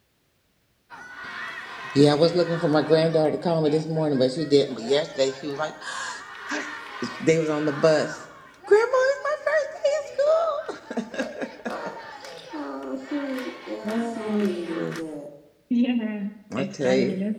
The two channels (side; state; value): both; identical; correlation 1.00